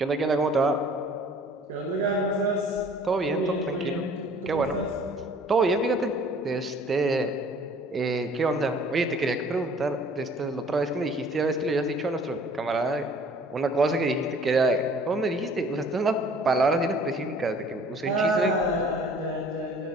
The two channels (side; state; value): both; normal; correlation 0.53